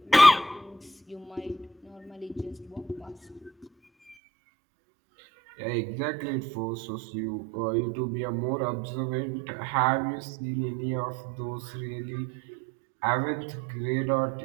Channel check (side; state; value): left; drops out; at 4.2 s